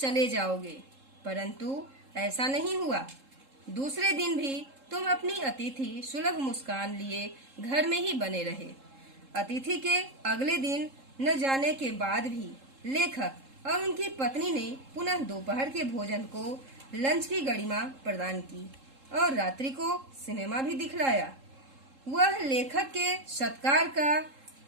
जाओगे, परंतु ऐसा नहीं हुआ। दूसरे दिन भी तुम अपनी अतिथि सुलभ मुस्कान लिए घर में ही बने रहे। अतिथि के अगले दिन न जाने के बाद भी लेखक और उनकी पत्नी ने पुनः दोपहर के भोजन को लंच की गरिमा प्रदान की और रात्रि को सिनेमा भी दिखलाया। वह लेखक के सत्कार का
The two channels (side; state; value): left; late; 3.7 ms